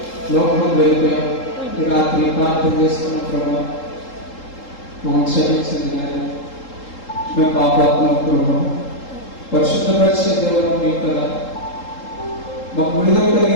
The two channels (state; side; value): late; right; 3.8 ms